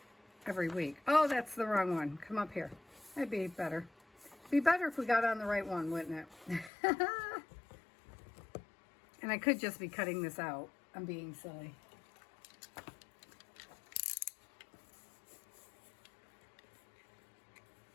every week. Oh, that's the wrong one. Come up here. That'd be better. Be better if we got on the right one, wouldn't it? And I could just be cutting this out. I'm being silly.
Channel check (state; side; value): drops out; right; at 6.7 s